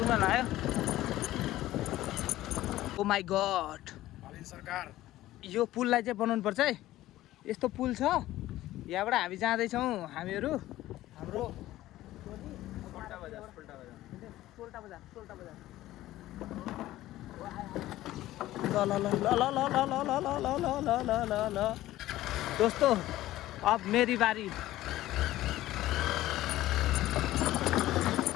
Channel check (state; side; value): quieter; right; 15.4 dB